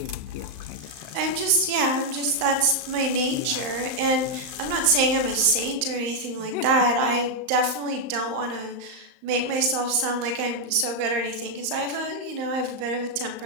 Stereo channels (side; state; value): left; late; 35 ms